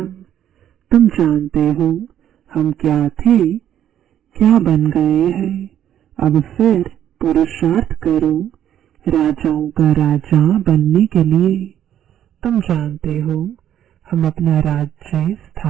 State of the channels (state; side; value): quieter; left; 10.6 dB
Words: तुम जानते हो हम क्या थे, क्या बन गए हैं। अब फिर पुरुषार्थ करो राजाओं का राजा बनने के लिए। तुम जानते हो हम अपना राज्य